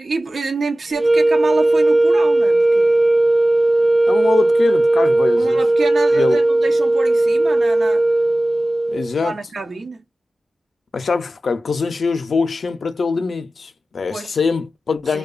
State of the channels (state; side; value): normal; both; correlation 0.96